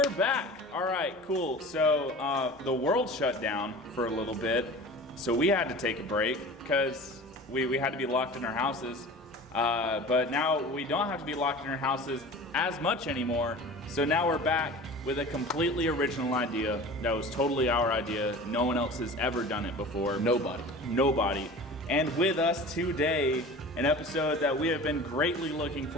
back. All right, cool. So the world shut down for a little bit, so we had to take a break because we had to be locked in our houses. But now we don't have to be locked in our houses as much anymore. So now we're back with a completely original idea that was totally our idea. No one else has ever done it before. Nobody. And with us today, an episode that we have been greatly looking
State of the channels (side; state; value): both; normal; correlation 0.38